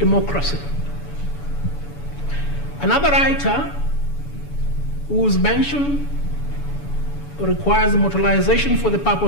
Another writer whose mention requires immortalization for the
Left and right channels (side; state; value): right; late; 7.0 ms